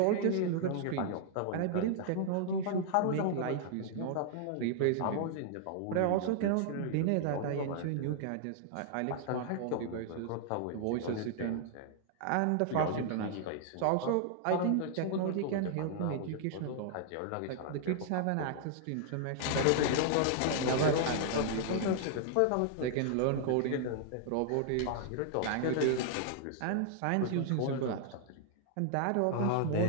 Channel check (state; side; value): different; both; correlation -0.01